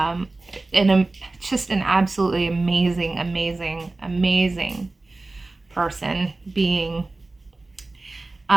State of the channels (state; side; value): quieter; left; 3.2 dB